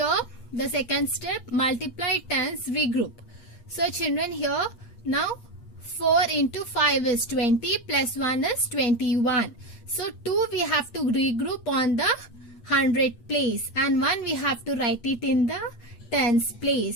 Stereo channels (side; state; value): right; late; 8.4 ms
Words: the second step, multiply tens, regroup. So children, here now 4 into 5 is 20 plus 1 is 21. So 2 we have to regroup on the 100 place, and 1 we have to write it in the tens